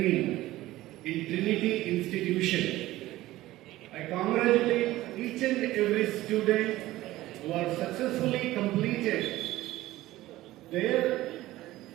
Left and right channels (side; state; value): left; quieter; 16.5 dB